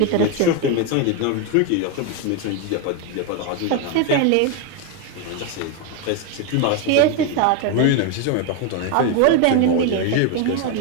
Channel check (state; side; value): different; both; correlation 0.02